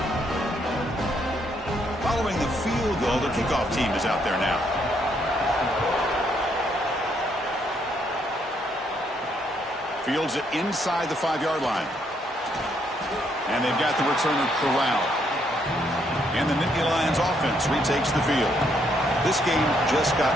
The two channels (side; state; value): both; normal; correlation 0.73